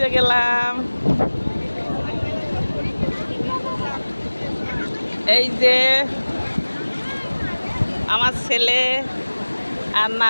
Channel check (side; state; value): both; inverted; correlation -1.00